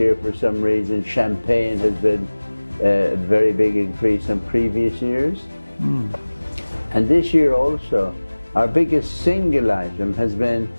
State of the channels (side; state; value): both; inverted; correlation -1.00